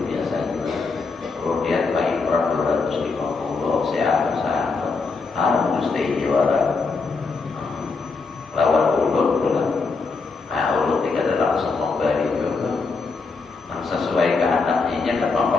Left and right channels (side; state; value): right; quieter; 4.3 dB